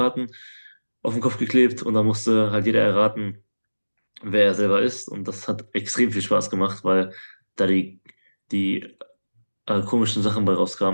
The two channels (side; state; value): both; inverted; correlation -1.00